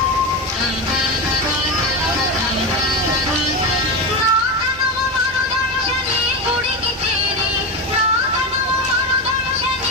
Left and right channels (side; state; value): both; normal; correlation 0.17